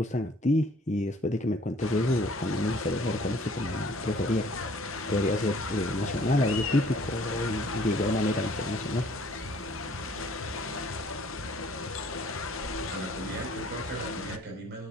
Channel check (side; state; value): both; normal; correlation 0.57